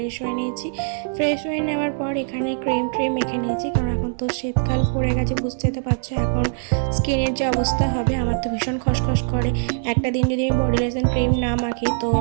হয়ে নিয়েছি। ফ্রেশ হয়ে নেওয়ার পর এখানে ক্রিম মেখে নিয়েছি, কারণ এখন তো শীতকাল পড়ে গেছে, বুঝতে তো পারছো এখন স্কিনের যে অবস্থা হবে। আমার তো ভীষণ খসখস করে, একটা দিন যদি আমি বডি লোশন ক্রিম না মাখি তো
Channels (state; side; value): silent; left; digital silence